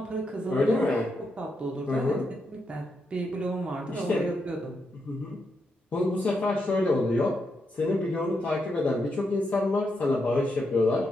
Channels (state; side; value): normal; both; correlation 0.83